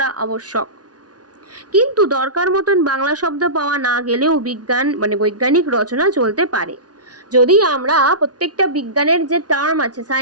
আবশ্যক। কিন্তু দরকার মতন বাংলা শব্দ পাওয়া না গেলেও বৈজ্ঞানিক রচনা চলতে পারে। যদি আমরা প্রত্যেকটা বিজ্ঞানের যে টার্ম আছে,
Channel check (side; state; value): left; late; 0.69 ms